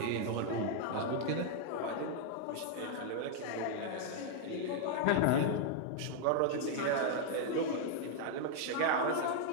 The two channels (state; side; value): different; both; correlation -0.01